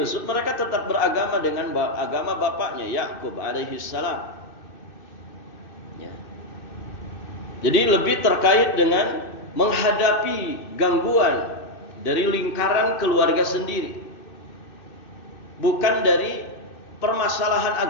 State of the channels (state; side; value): late; right; 2.6 ms